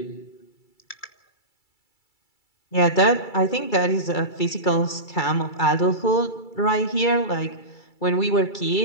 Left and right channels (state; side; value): late; right; 2.3 ms